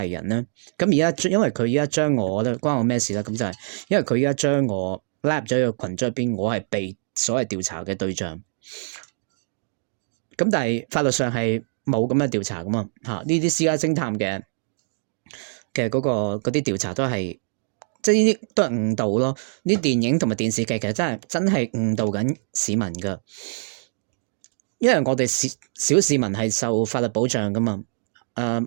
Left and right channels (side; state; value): left; silent; digital silence